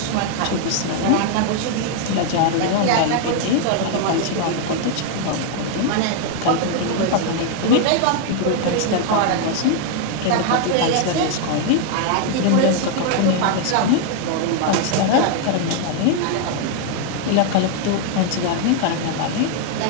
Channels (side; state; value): both; different; correlation 0.00